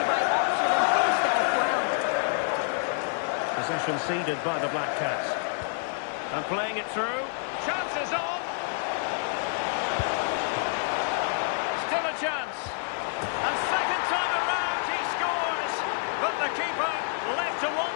the right option and finished it off well. Possession ceded by the Black Cats. And playing it through. Chances on. Still a chance. And second time around he scores. But the keeper left to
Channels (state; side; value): silent; right; 59 dB below the other